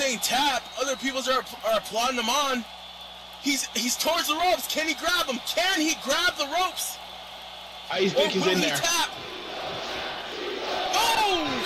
tap. Other people are applauding him on. He's towards the ropes. Can he grab him? Can he grab the ropes? I think he's in there. Tap? Oh!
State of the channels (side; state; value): both; identical; correlation 1.00